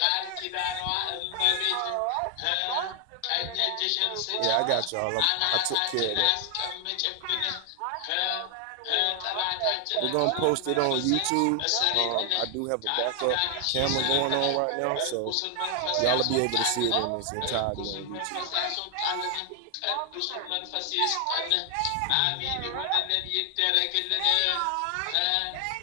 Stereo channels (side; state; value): both; different; correlation 0.00